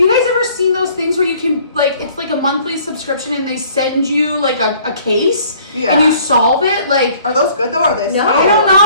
guys ever seen those things where you can, like, it's like a monthly subscription and they send you like a case and you solve it? Like, are those good though? Or are they? No. I don't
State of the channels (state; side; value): inverted; both; correlation -0.57